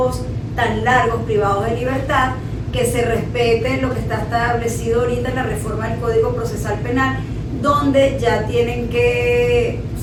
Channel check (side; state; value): both; identical; correlation 1.00